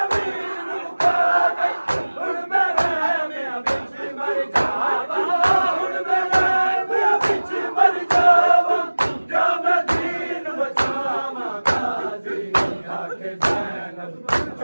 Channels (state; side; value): inverted; both; correlation -1.00